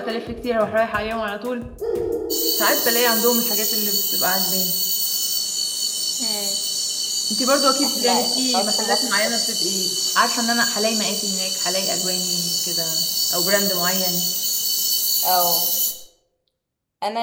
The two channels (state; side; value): identical; both; correlation 1.00